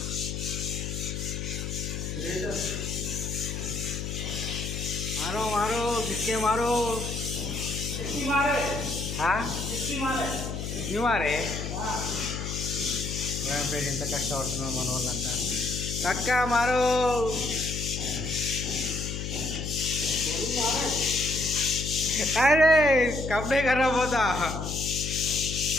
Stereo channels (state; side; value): noise; left; hum, 5 dB below the sound